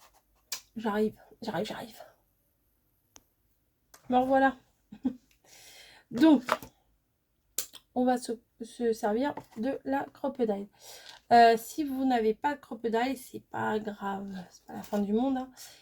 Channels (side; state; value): both; identical; correlation 1.00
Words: J'arrive. Me revoilà. Donc, on va se servir de la crocodile. Si vous n'avez pas de crocodile, c'est pas grave, c'est pas la fin du monde, hein.